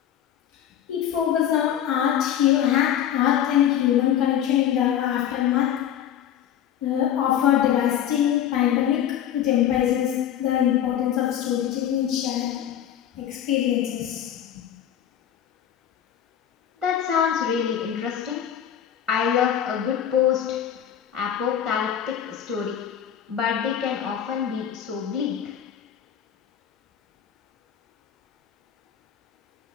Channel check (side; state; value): right; quieter; 10.1 dB